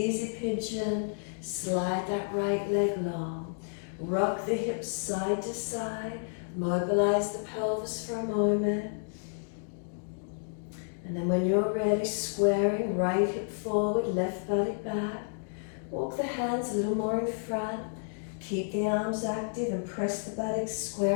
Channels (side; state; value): right; silent; digital silence